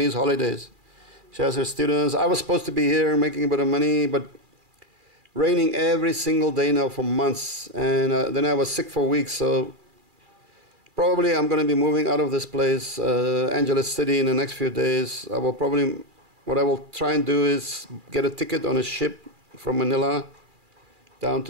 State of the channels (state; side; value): late; left; 2.4 ms